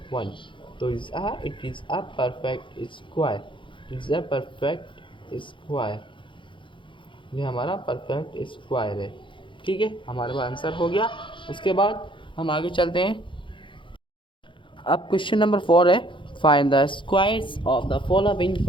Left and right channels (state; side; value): late; right; 0.24 ms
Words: तो it is a perfect square, ये हमारा परफेक्ट स्क्वायर है, ठीक है। हमारे पास आंसर हो गया। उसके बाद हम आगे चलते हैं। अब क्वेश्चन नंबर 4 है, find the squares of the following